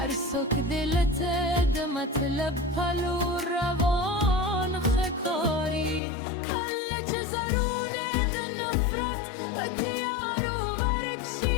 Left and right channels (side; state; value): right; drops out; at 6.0 s